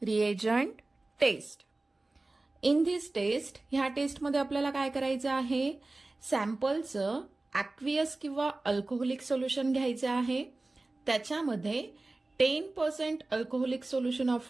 reagent test. In this test, ह्या test मध्ये आपल्याला काय करायचं आहे, सॅम्पलचं aqueous किंवा alcoholic solution घ्यायचं आहे. त्याच्यामध्ये 10% alcoholic solution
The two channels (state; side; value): quieter; left; 3.1 dB